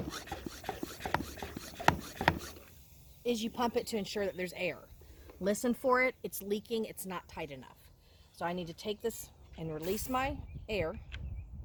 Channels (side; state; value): both; identical; correlation 1.00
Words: is you pump it to ensure that there's air. Listen for it. It's leaking. It's not tight enough. So I need to take this and release my air.